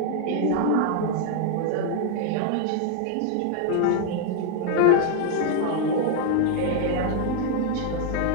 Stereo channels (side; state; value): both; different; correlation 0.00